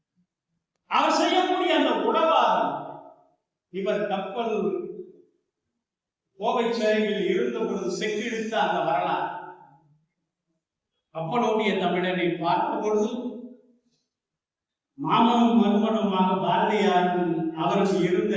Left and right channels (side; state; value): both; identical; correlation 1.00